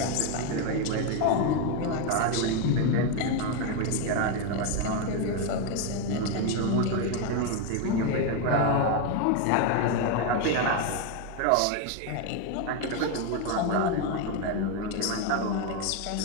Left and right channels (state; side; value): different; both; correlation 0.02